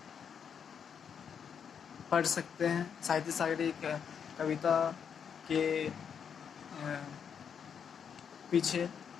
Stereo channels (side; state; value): right; quieter; 7.3 dB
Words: पढ़ सकते हैं। साहित्य सागर एक कविता के पीछे